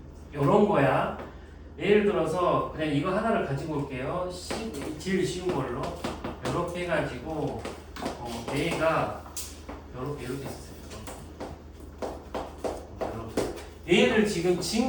요런 거야. 예를 들어서 그냥 이거 하나를 가지고 올게요. 제일 쉬운 걸로 이렇게 해가지고 A가 이렇게 있었어요. 얘를 지금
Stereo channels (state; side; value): identical; both; correlation 1.00